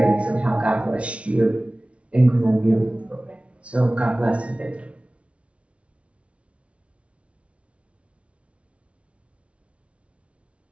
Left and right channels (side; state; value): left; late; 0.062 ms